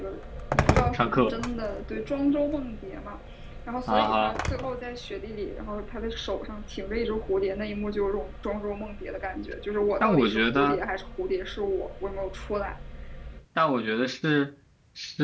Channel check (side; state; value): both; identical; correlation 1.00